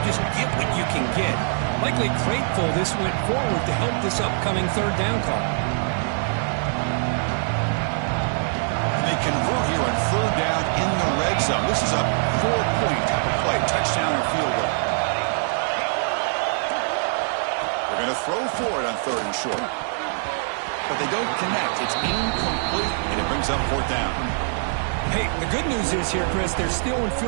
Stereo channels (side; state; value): left; silent; digital silence